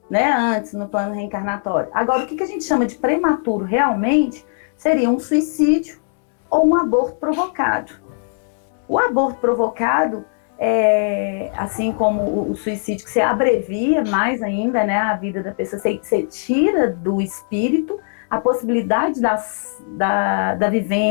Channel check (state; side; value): silent; right; digital silence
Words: né, antes no plano reencarnatório. Agora, o que a gente chama de prematuro realmente seria um suicídio ou um aborto provocado. O aborto provocado, assim como o suicídio, que você abrevia mais ainda, né, a vida da pessoa, você tira do espírito a possibilidade da